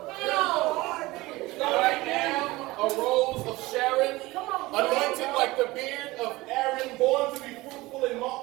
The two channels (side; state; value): left; quieter; 20.2 dB